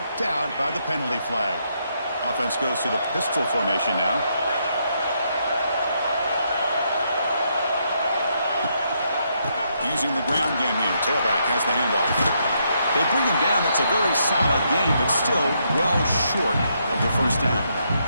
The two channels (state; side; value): inverted; both; correlation -0.77